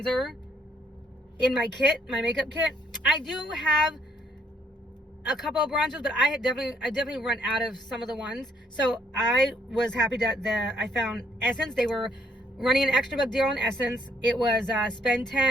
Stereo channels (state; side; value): normal; both; correlation 0.67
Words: in my kit, my makeup kit. I do have a couple of bronzers, but I definitely run out of some of the ones. So I was happy that I found Essence. They were running an extra buck deal on Essence. It was spend